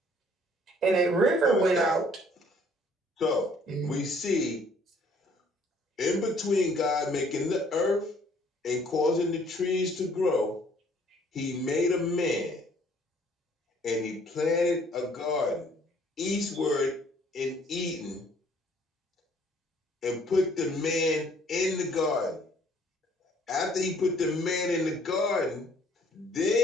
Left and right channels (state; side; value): normal; both; correlation 0.60